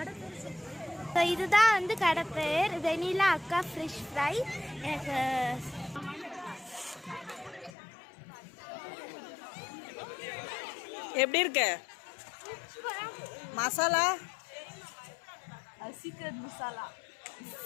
இதுதான் வந்து கடை பேர் வெனிலா அக்கா ஃபிஷ் ஃப்ரை. எனக்கு எப்படி இருக்கு மசாலா? சீக்ரெட் மசாலா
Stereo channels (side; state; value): right; drops out; at 7.7 s